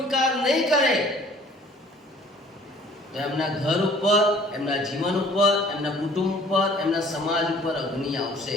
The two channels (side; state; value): both; normal; correlation 0.53